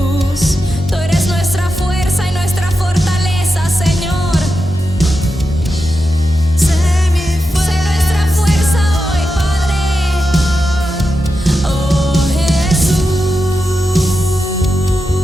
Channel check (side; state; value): both; normal; correlation 0.89